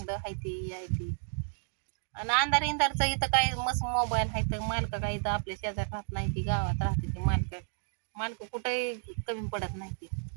हायती यायती आणि अंधार इंधारचं इथं काय मस्त मोबाईल आहे तर मालक काय इथं आपल्या शेजारी राहत नाही ती गावात राहते ती मालक कुठेही कमी पडत नाही ती.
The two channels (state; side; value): silent; left; digital silence